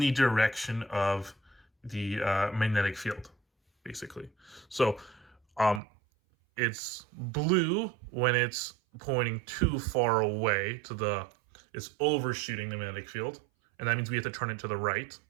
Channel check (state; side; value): drops out; left; at 5.8 s